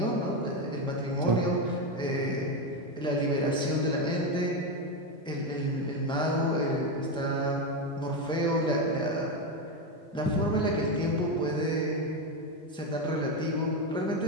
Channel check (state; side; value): normal; both; correlation 0.11